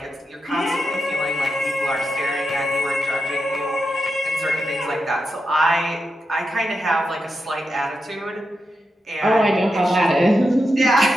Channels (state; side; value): normal; both; correlation 0.88